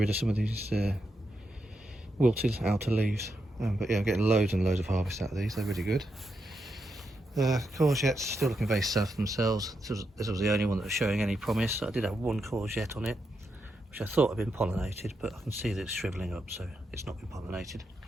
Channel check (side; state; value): both; normal; correlation 0.84